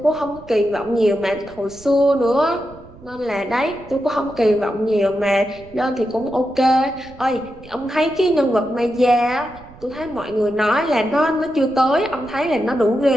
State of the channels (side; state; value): right; noise; rumble, 21 dB below the sound